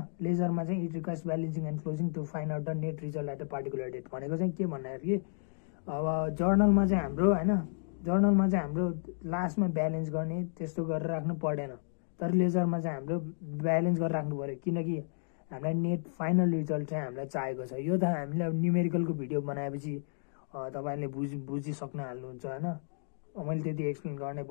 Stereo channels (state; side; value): silent; right; digital silence